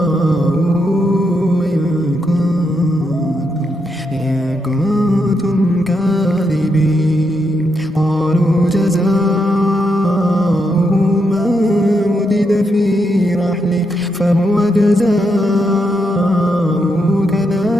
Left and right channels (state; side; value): normal; both; correlation 0.81